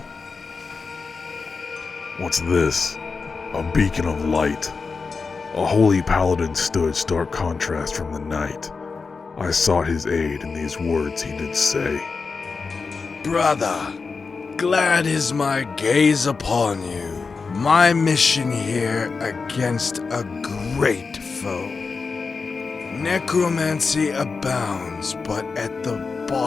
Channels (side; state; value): right; quieter; 4.7 dB